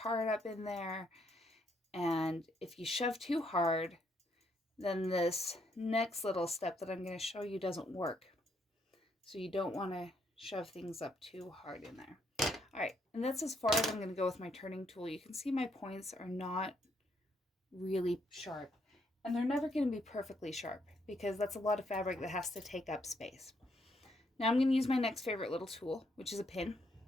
up in there. And if you shove too hard, then this next little step that I'm going to show you doesn't work. So you don't want to shove things up too hard in there. All right, and that's as far as I'm going to go with my turning tool. You can see my points are not really sharp, and they're never going to be perfectly sharp because that's a lot of fabric that has to take up space. Now I'm going to use my next favorite little tool, which is a pin.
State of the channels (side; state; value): both; normal; correlation 0.74